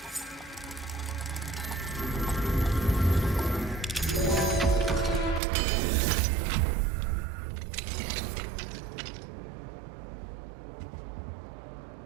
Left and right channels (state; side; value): drops out; left; at 5.4 s